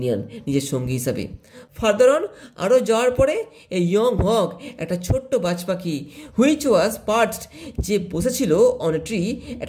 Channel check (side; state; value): both; identical; correlation 1.00